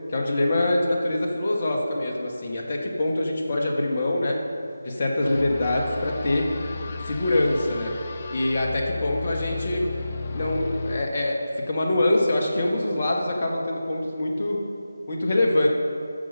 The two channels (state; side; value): inverted; both; correlation -0.93